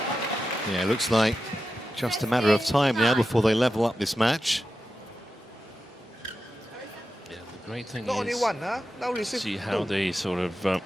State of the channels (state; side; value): normal; both; correlation 0.91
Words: Yeah, it looks like just a matter of time now before they level up this match. Yeah, the great thing Not only is one, huh? Now receive see how two. they sort of